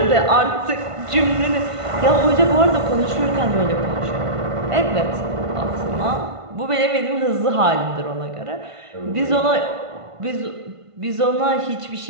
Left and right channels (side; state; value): left; late; 1.5 ms